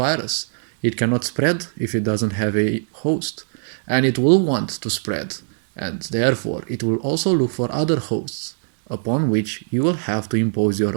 It cannot spread if it doesn't have a host. And it will want to spread. And therefore, it will also look for other hosts, upon which you will have to impose your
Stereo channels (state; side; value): silent; left; digital silence